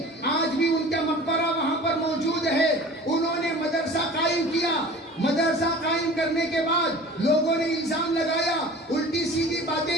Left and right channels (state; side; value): normal; both; correlation 0.42